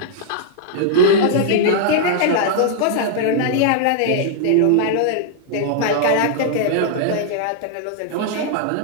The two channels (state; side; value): different; both; correlation -0.01